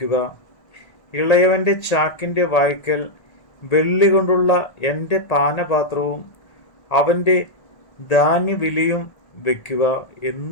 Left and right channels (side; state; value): right; late; 1.8 ms